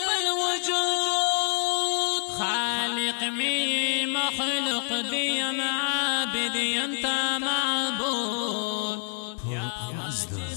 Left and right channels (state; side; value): silent; right; digital silence